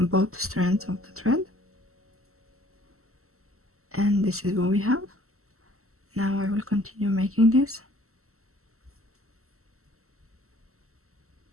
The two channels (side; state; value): left; late; 0.63 ms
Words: strands of the thread. and this is what we have. Now I will continue making this.